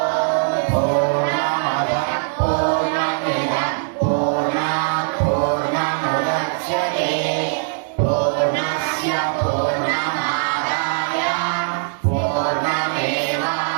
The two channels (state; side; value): silent; left; digital silence